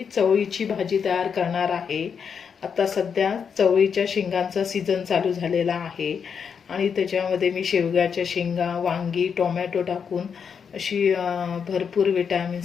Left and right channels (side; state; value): right; quieter; 6.7 dB